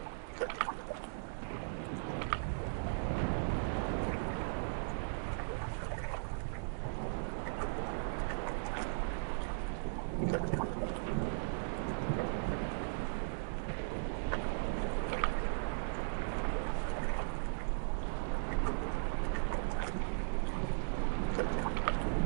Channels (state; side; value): silent; left; digital silence